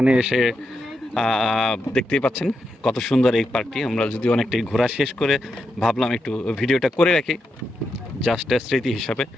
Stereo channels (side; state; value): both; normal; correlation 0.85